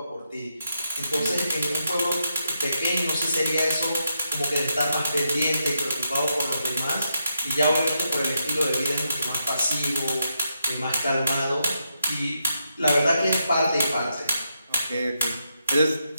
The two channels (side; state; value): both; inverted; correlation -0.82